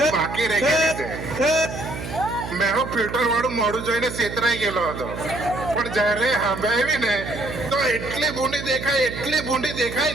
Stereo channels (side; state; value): right; noise; hum, 8 dB below the sound